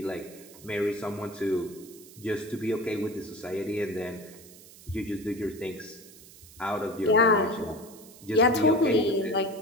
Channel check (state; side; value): noise; right; hiss, 20 dB below the sound